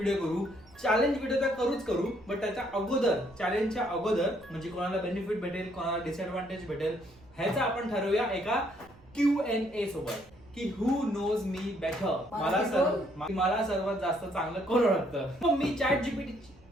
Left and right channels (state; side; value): noise; right; rumble, 26 dB below the sound